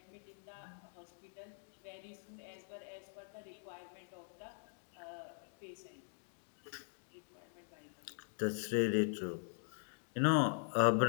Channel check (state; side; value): silent; right; digital silence